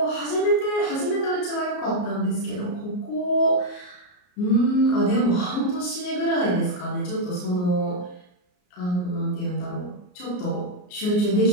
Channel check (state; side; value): late; right; 33 ms